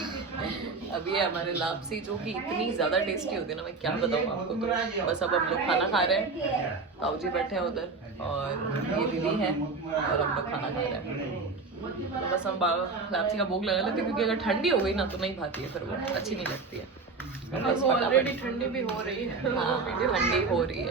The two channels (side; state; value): left; quieter; 4.2 dB